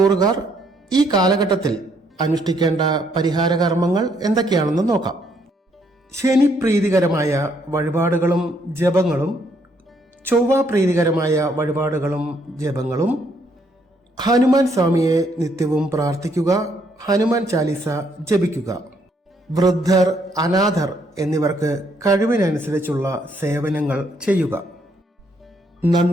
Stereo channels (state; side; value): normal; both; correlation 0.71